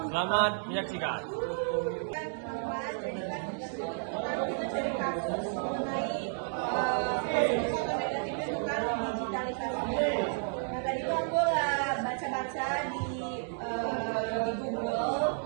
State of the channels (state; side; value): silent; left; digital silence